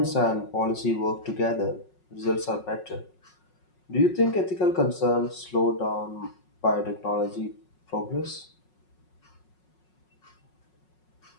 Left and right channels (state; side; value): late; right; 5.5 ms